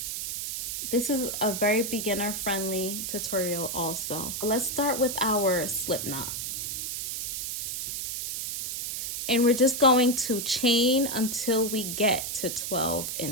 This is a very beginner friendly tutorial also. Let's start with our slip knot. And we're just going to chain until we get to 12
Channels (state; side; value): noise; right; hiss, 4 dB below the sound